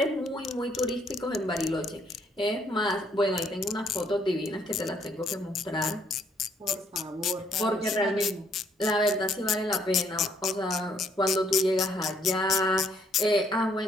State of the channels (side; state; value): both; normal; correlation 0.68